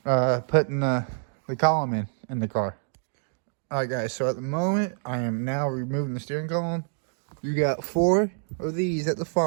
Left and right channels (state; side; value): silent; left; digital silence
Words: putting the column in the car. Alright guys, so at the moment I am now removing the steering column. You got 4 of these at the